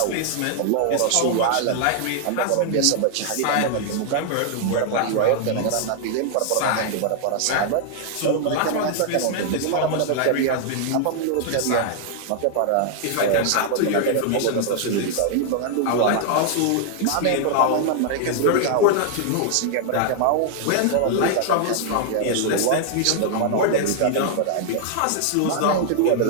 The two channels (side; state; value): both; different; correlation 0.00